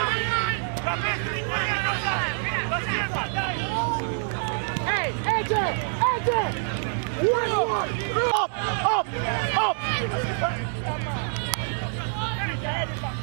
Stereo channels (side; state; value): left; silent; 61 dB below the other